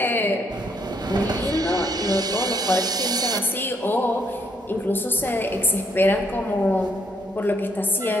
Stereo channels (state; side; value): normal; both; correlation 0.72